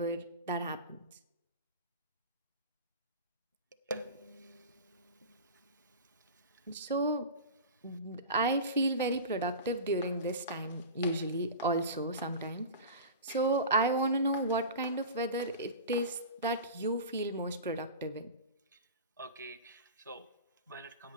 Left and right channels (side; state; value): both; inverted; correlation -0.31